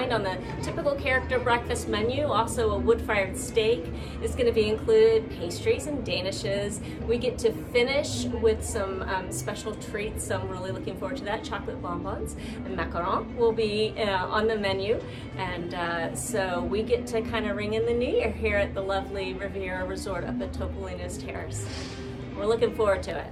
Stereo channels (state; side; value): identical; both; correlation 1.00